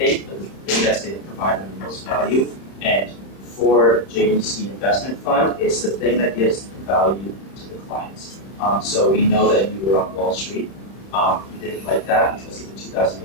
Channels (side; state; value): right; late; 31 ms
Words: but the thing that's going to provide them the most value. And for JUC Investment Fund, it's the thing that gives the value to the clients. So we know that you were on Wall Street. You didn't like that because of the